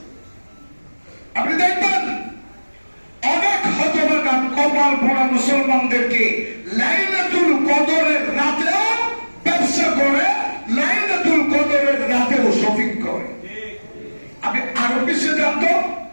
আপনি দেখবেন অনেক হতভাগা কপাল পোড়া মুসলমানদেরকে লাইলাতুল কদরের রাতেও ব্যবসা করে, লাইলাতুল কদরের রাতেও শপিং করে। আপনি আরো বেশি জানতো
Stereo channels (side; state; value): both; inverted; correlation -1.00